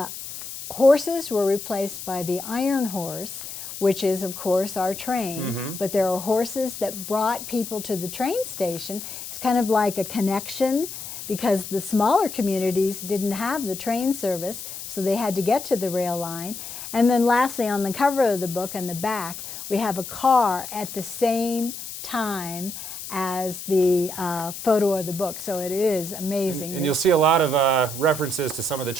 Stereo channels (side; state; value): left; noise; hiss, 10 dB below the sound